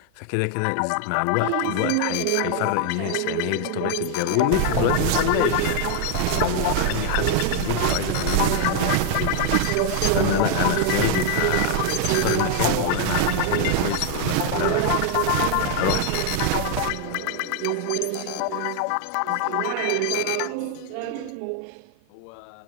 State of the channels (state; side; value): different; both; correlation 0.00